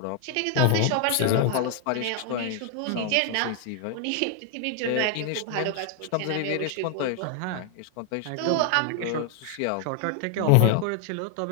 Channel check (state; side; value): different; both; correlation 0.00